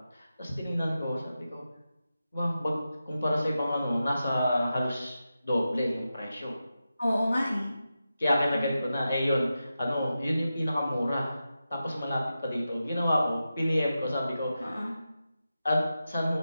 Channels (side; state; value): both; inverted; correlation -0.91